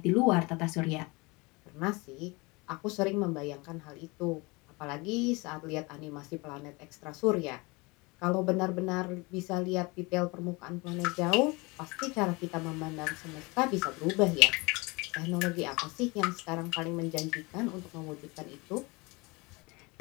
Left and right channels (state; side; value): quieter; right; 25.9 dB